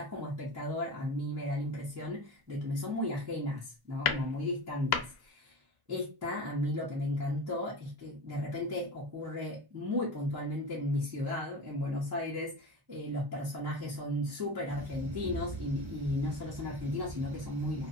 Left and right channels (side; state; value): left; late; 1.1 ms